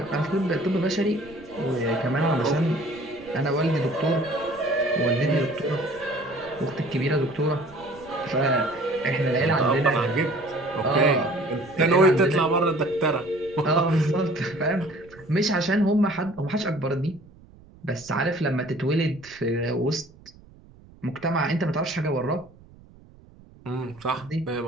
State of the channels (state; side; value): noise; right; rumble, 24 dB below the sound